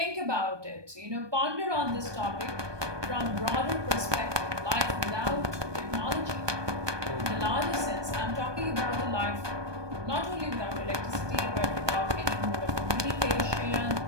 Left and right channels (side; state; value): left; late; 1.2 ms